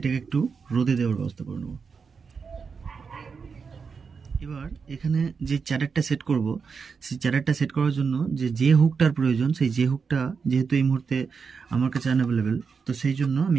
একটু রোদে দেওয়ার ব্যবস্থা করে নেব। এবার এখানে যে চ্যাডারটা সেট করব, সেই চ্যাডারটা সেট করার জন্য যে হুকটার প্রয়োজন, সেই যে হুকটা যেহেতু এই মুহূর্তে আমার কাছে আনঅ্যাভেলেবেল, তো সেই জন্য আমি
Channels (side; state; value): left; quieter; 5.5 dB